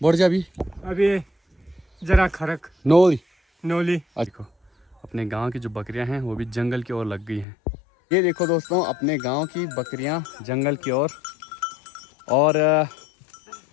बोड़ जा भी अभी जरा खरक नोली नोली देखो अपने गांव की जो बकरियां हैं वो भी जंगल की ओर लग गई हैं। ये देखो दोस्तों, अपने गांव की बकरियां जंगल की ओर। और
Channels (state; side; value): drops out; right; at 7.5 s